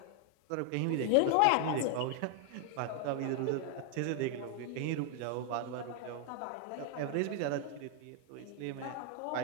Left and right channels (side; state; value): both; different; correlation 0.00